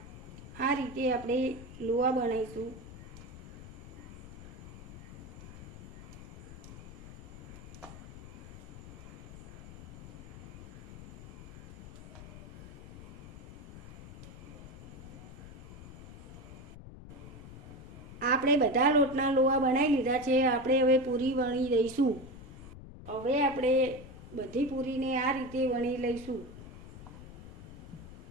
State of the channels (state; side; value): noise; left; rumble, 14 dB below the sound